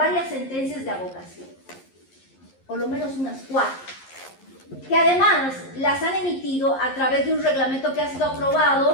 sentencias de abogación, por lo menos unas 4, que además las han emitido a través de un reglamento que ha sido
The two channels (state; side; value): late; right; 11 ms